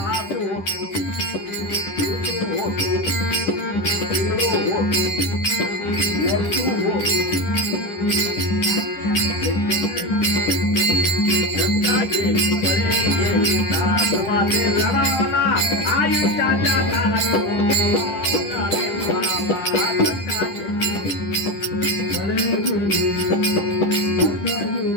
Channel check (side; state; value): right; late; 10 ms